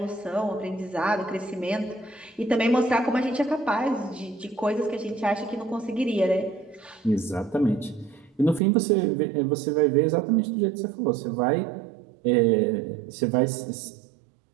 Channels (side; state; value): left; drops out; at 8.6 s